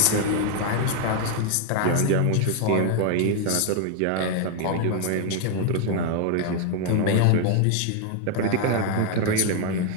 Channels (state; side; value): different; both; correlation 0.00